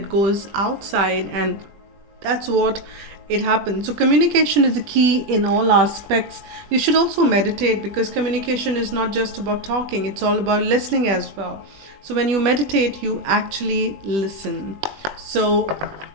goes outside, and that's what it happens. So communication is the key in all aspects. You should also meditate, because communication is not just about talking, it's all about listening as well. So when you meditate, you actually listen. So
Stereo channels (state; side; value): late; left; 20 ms